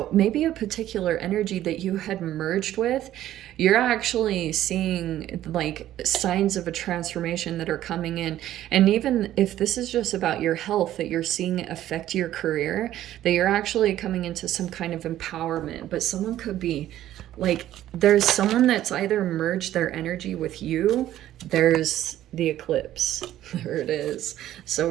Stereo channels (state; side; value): quieter; left; 13.0 dB